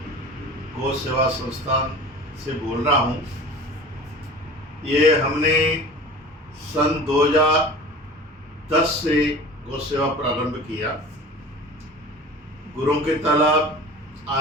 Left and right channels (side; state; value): both; normal; correlation 0.39